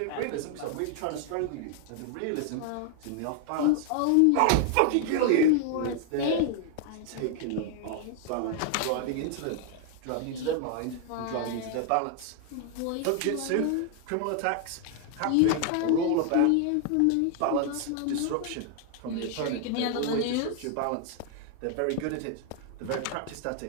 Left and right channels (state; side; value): different; both; correlation 0.00